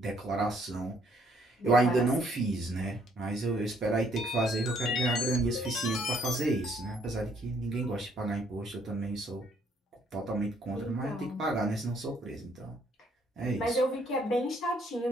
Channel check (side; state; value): both; normal; correlation 0.66